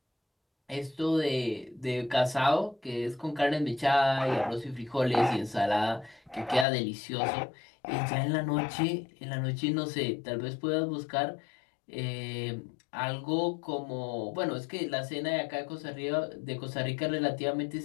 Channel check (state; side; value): drops out; right; at 6.7 s